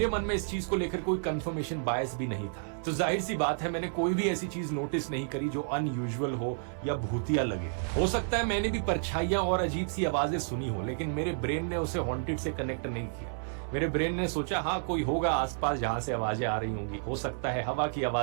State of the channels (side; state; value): left; silent; digital silence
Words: मन में इस चीज को लेकर कोई कंफर्मेशन बायस भी नहीं था। तो जाहिर सी बात है, मैंने कोई भी ऐसी चीज नोटिस नहीं करी जो अनयूजुअल हो या भूतिया लगे। हो सकता है मैंने भी परछाइयां और अजीब सी आवाजें सुनी हो, लेकिन मेरे ब्रेन ने उसे हॉन्टेड से कनेक्ट नहीं किया। मेरे ब्रेन ने सोचा हाँ कोई होगा आसपास जहां से आवाजें आ रही होंगी, हो सकता है हवा की